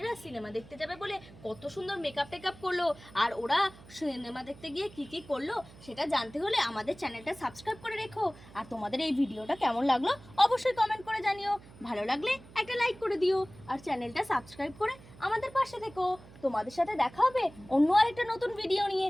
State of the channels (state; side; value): noise; right; hum, 20 dB below the sound